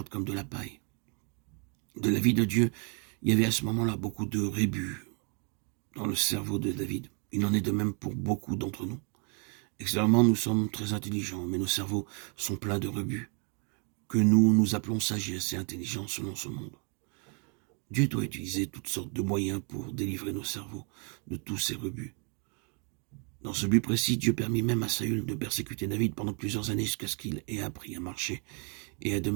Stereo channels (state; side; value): quieter; left; 36.8 dB